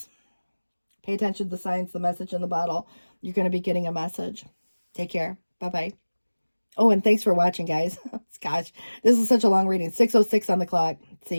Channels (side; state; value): both; inverted; correlation -1.00